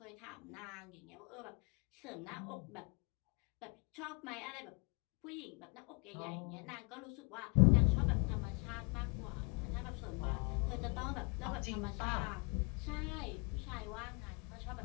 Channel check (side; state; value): right; quieter; 31.8 dB